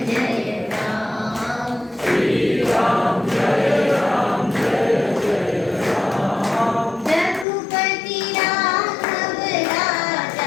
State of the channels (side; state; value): right; drops out; at 7.5 s